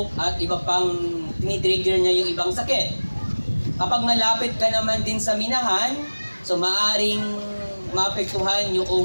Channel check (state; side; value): inverted; both; correlation -1.00